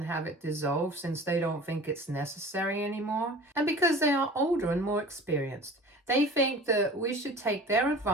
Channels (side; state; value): both; normal; correlation 0.41